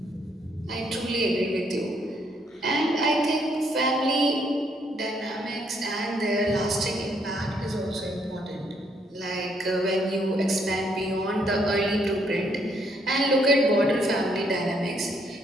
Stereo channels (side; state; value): both; normal; correlation 0.71